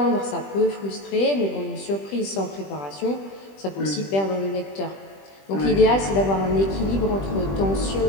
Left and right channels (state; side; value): late; right; 20 ms